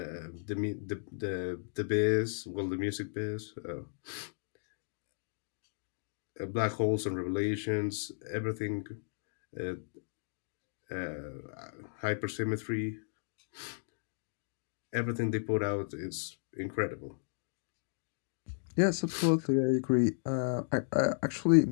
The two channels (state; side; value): silent; right; digital silence